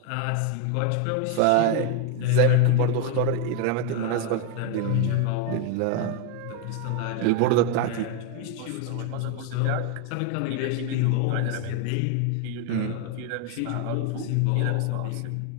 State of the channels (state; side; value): different; both; correlation 0.01